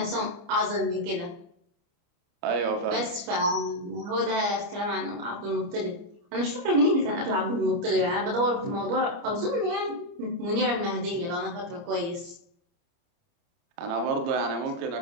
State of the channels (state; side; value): late; left; 29 ms